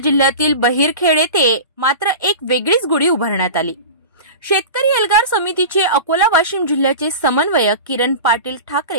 बहिरखेड येथे मात्र एक वेगळीच गुढी उभारण्यात आली। शेतकरी एल्गार समितीचे अकोला वाशिम जिल्ह्याचे समन्वयक किरण पाटील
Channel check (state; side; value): inverted; both; correlation -0.31